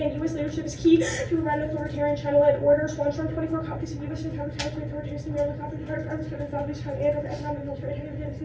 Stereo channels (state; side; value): identical; both; correlation 1.00